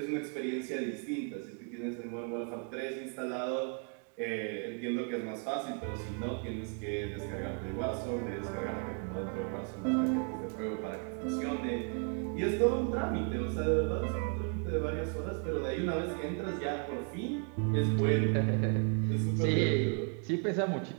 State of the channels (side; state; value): left; quieter; 39.6 dB